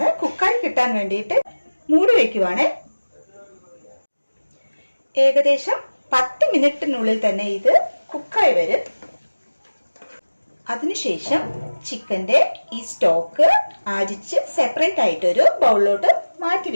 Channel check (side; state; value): both; inverted; correlation -1.00